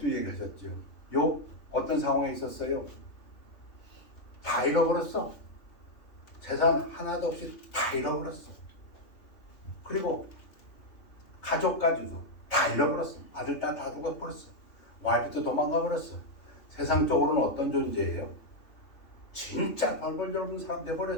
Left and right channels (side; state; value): right; late; 3.3 ms